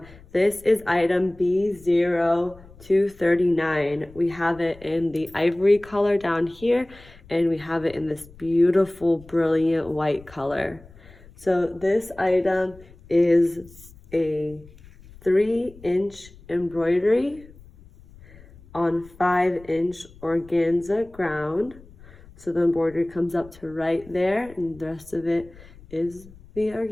This is item B0239. We have it in the ivory color down here, and we have it in this beautiful, brilliant white color. So this item is a 3-inch embroidery on 5-inch organza ground. So the embroidery comes up to right there, and the rest of it is the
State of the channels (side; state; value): left; noise; rumble, 22 dB below the sound